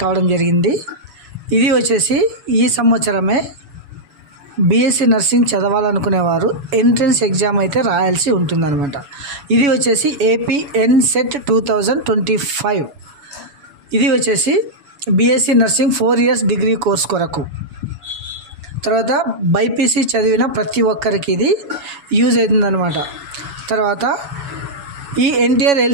కావడం జరిగింది. ఇది వచ్చేసి ఈ సంవత్సరమే BSc నర్సింగ్ చదవాలనుకునేవారు ఎంట్రన్స్ ఎగ్జామ్ అయితే రాయాల్సి ఉంటుందన్నమాట. ఇది వచ్చేసి APNSET 2025. ఇది వచ్చేసి BSc nursing 4 years degree course కొరకు. తర్వాత బైపీసీ చదివిన ప్రతి ఒక్కరికి ఇది యూజ్ అవుతుందన్నమాట. తర్వాత ఈ ఎన్టీఆర్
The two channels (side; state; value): left; late; 7.1 ms